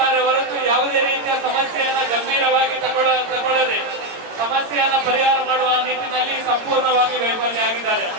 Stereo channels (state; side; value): late; left; 18 ms